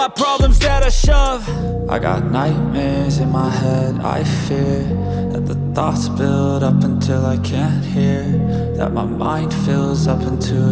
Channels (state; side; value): identical; both; correlation 1.00